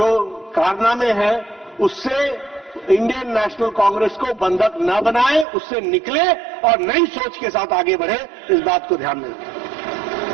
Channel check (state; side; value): drops out; left; at 5.5 s